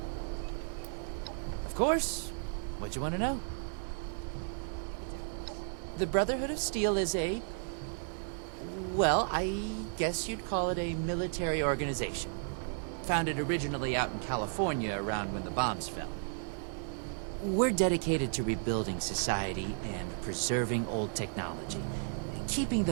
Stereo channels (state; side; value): silent; left; digital silence